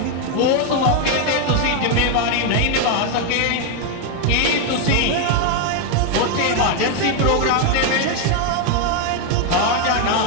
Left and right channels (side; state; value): both; different; correlation 0.01